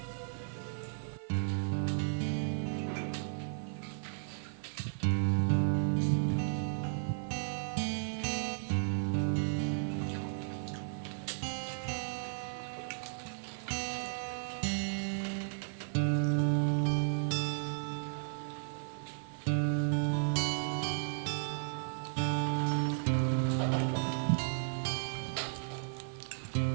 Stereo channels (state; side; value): silent; left; 55 dB below the other